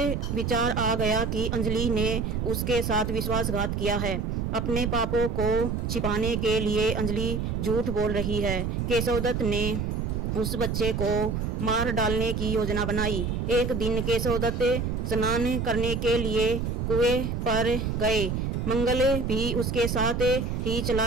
विचार आ गया कि अंजलि ने उसके साथ विश्वासघात किया है। अपने पापों को छिपाने के लिए अंजलि झूठ बोल रही है। केशव दत्त ने उस बच्चे को मार डालने की योजना बनाई। एक दिन केशव दत्त स्नान करने के लिए कुएं पर गए। मंगल भी उसके साथ ही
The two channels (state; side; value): noise; right; rumble, 1 dB below the sound